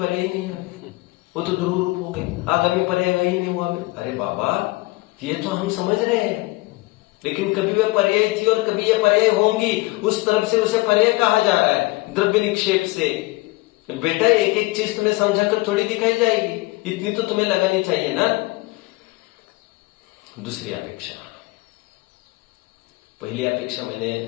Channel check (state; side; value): quieter; right; 22.1 dB